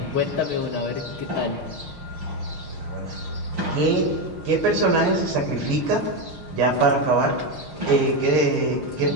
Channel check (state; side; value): late; left; 6.6 ms